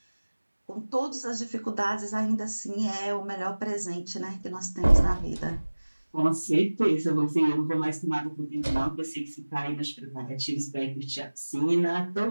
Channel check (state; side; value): inverted; both; correlation -1.00